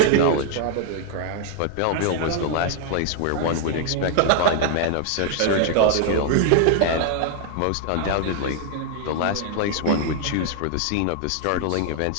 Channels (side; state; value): both; different; correlation 0.00